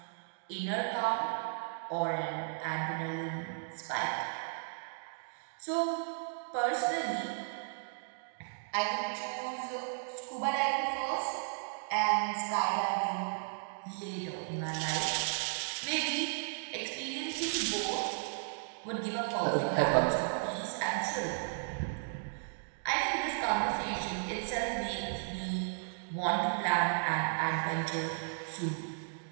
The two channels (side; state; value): left; silent; digital silence